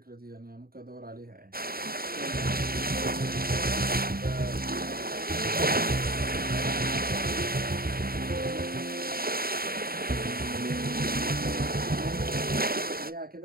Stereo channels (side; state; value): left; late; 0.43 ms